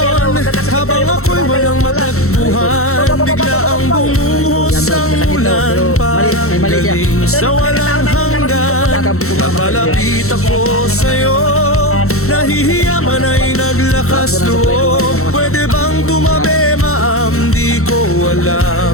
habang ako'y walang matagpuan. Bigla ang bumuhos ang ulan, parang galing sa walang hanggan. Napalapit ako sa'yo, nahihiya man ay naglakas loob. Pwede bang tumabi, ma'am? Di ko alam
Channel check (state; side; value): late; right; 0.63 ms